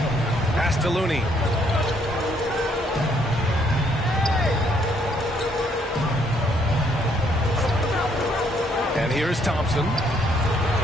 Pass to Looney. And here's Thompson.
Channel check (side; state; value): both; normal; correlation 0.69